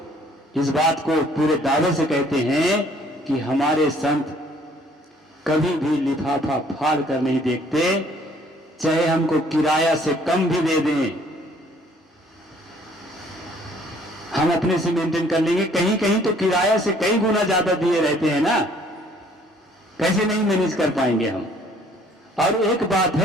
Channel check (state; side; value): normal; both; correlation 0.60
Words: इस बात को पूरे दावे से कहते हैं कि हमारे संत कभी भी लिफाफा फाड़ कर नहीं देखते, चाहे हमको किराया से कम भी दे दें, हम अपने से मेंटेन कर लेंगे। कहीं कहीं तो किराया से कई गुना ज्यादा दिए रहते हैं ना, कैसे नहीं मैनेज कर पाएंगे हम। और एक बात